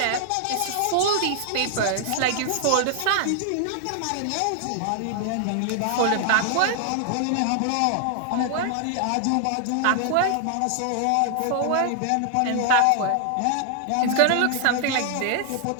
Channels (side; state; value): both; different; correlation 0.00